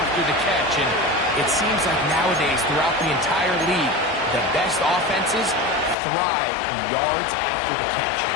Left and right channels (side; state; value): right; drops out; at 6.0 s